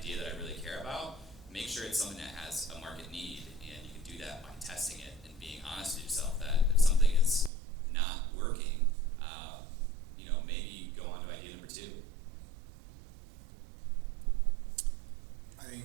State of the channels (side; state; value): left; drops out; at 7.5 s